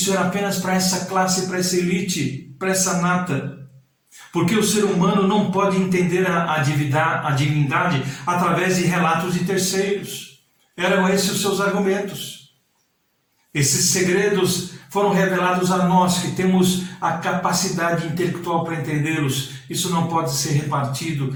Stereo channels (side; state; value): both; identical; correlation 1.00